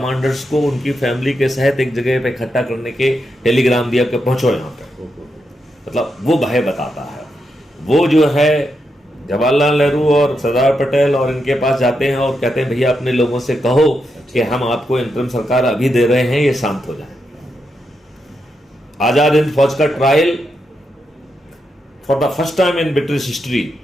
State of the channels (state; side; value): normal; both; correlation 0.84